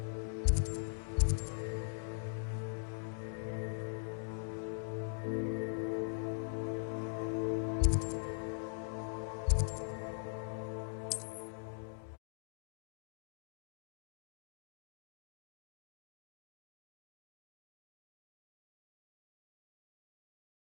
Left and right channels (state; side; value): silent; right; digital silence